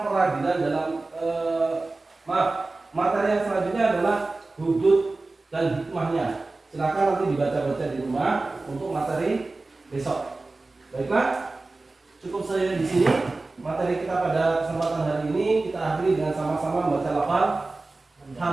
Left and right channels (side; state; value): left; quieter; 3.3 dB